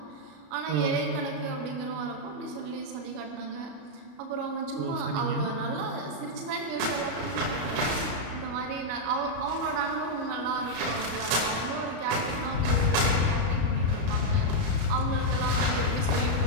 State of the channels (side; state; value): left; late; 33 ms